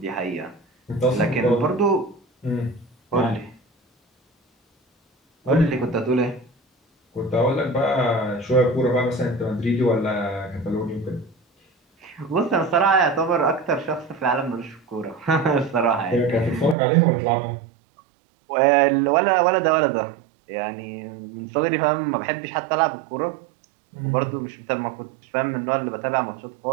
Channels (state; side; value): drops out; left; at 16.8 s